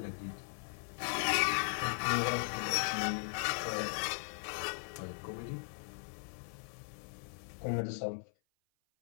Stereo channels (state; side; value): silent; right; 52 dB below the other